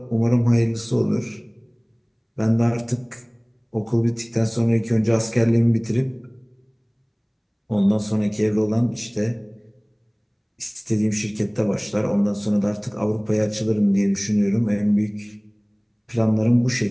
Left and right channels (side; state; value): both; identical; correlation 1.00